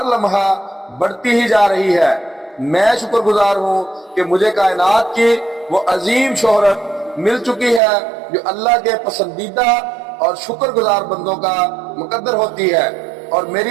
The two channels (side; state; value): left; drops out; at 7.8 s